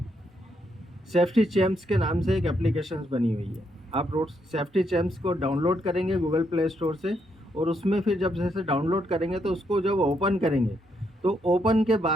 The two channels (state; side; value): normal; both; correlation 0.77